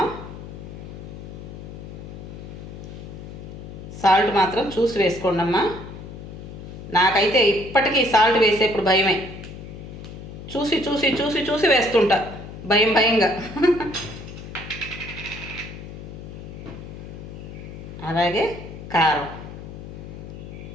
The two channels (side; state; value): left; noise; hum, 12 dB below the sound